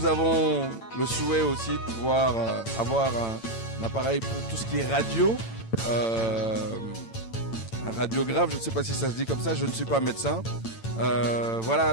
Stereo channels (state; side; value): late; right; 8.9 ms